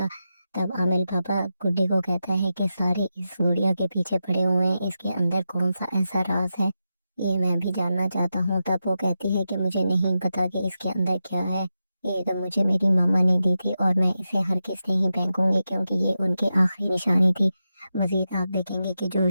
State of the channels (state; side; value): inverted; both; correlation -0.89